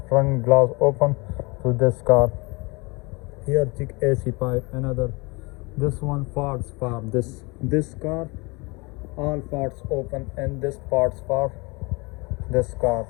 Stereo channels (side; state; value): right; quieter; 27.0 dB